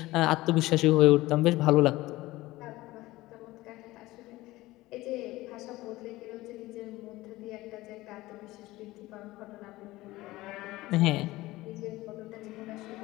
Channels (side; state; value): right; quieter; 18.5 dB